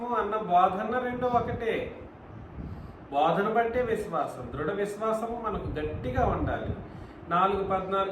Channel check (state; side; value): identical; both; correlation 1.00